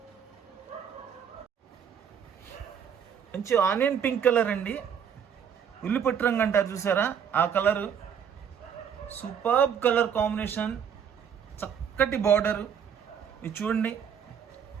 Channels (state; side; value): quieter; left; 7.9 dB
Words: మంచి ఆనియన్ పింక్ కలర్ అండి, ఉల్లిపట్టు రంగు అంటారు చూసారా ఆ కలరు. సూపర్బ్ కలర్ కాంబినేషన్, చక్కటి బార్డర్. ఇది చూడండి,